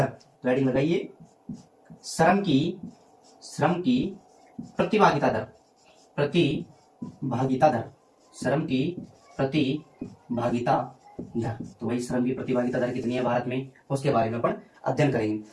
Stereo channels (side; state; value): both; identical; correlation 1.00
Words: तो हेडिंग लगाइए श्रम की प्रतिभागिता दर। प्रतिभागिता दर। श्रम की प्रतिभागिता दर। तो वही श्रम की प्रतिभागिता दर कितनी है भारत में, उसके बारे में अपन अध्ययन करेंगे।